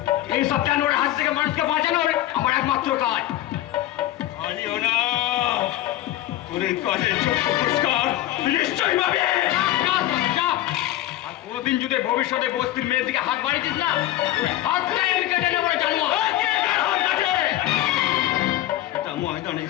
এই সব জানোয়ারের হাত থেকে মানুষকে বাঁচানোর আমার একমাত্র কাজ। আইও না, তোর এই কাজের যোগ্য পুরস্কার নিশ্চয়ই পাবে। যা, যা। আর কোনোদিন যদি ভবিষ্যতে বস্তির মেয়ের দিকে হাত বাড়িয়েছিস না, হাতটাই আমি কেটে নেবো জানোয়ার। এটা ময়দানে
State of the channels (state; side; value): quieter; right; 14.5 dB